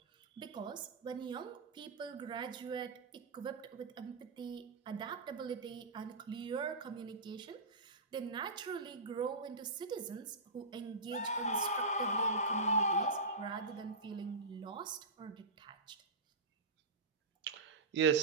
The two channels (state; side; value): quieter; left; 3.1 dB